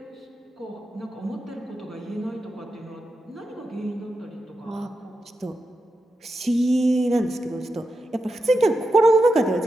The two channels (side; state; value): both; normal; correlation 0.89